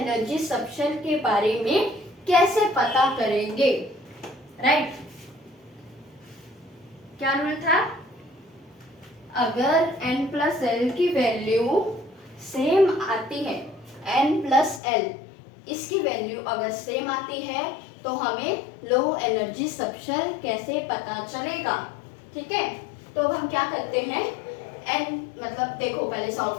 सबशेल के बारे में कैसे पता करेंगे, राइट। क्या रूल था, अगर n+l की वैल्यू सेम आती है, n+l इसकी वैल्यू अगर सेम आती है तो हमें लो एनर्जी सबशेल कैसे पता चलेगा, ठीक है। तो अब हम क्या करते हैं, n मतलब देखो पहले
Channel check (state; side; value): drops out; right; at 14.8 s